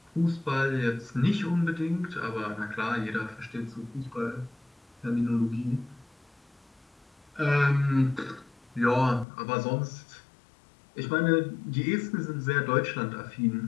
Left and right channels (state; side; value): drops out; right; at 9.2 s